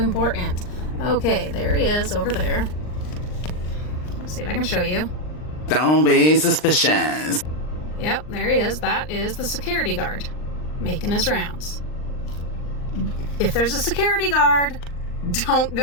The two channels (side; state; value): right; late; 39 ms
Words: Okay, there he is over there. Let's see if I can show you. Don't be suspicious. Yep, there he is. That is the security guard making his rounds. If there's a security guard, don't